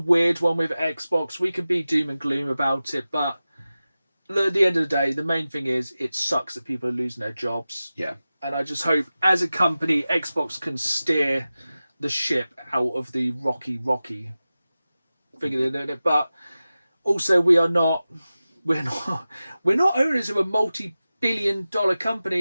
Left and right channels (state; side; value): inverted; both; correlation -0.95